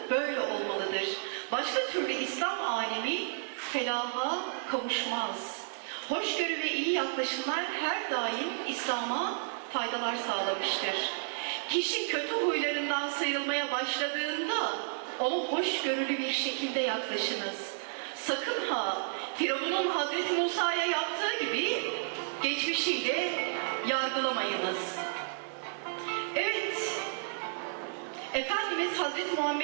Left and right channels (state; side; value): silent; left; 56 dB below the other